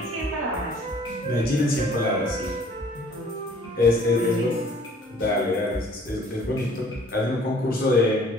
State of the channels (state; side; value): normal; both; correlation 0.55